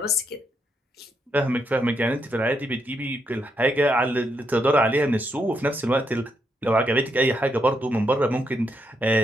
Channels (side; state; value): both; normal; correlation 0.78